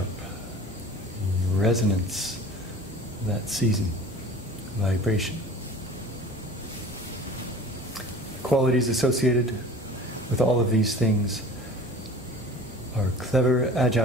resonance of that season, vibration. Qualities associated with all of these things are clever,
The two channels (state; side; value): normal; both; correlation 0.42